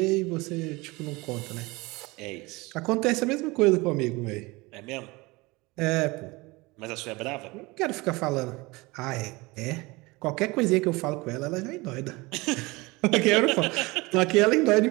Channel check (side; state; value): left; quieter; 23.5 dB